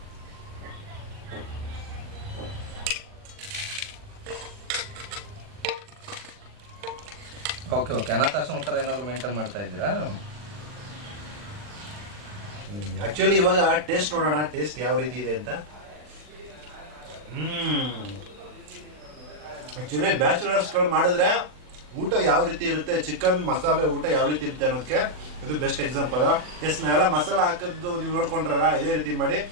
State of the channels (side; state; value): left; late; 40 ms